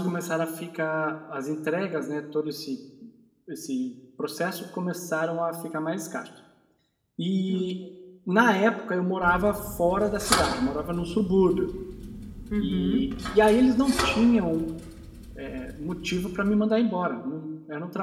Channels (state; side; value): identical; both; correlation 1.00